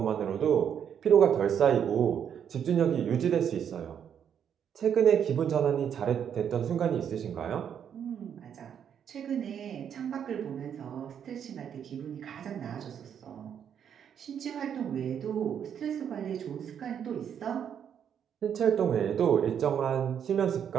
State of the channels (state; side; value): quieter; left; 8.5 dB